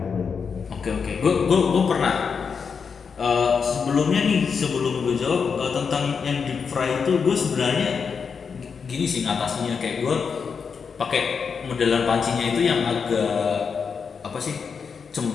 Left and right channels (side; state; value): right; quieter; 5.9 dB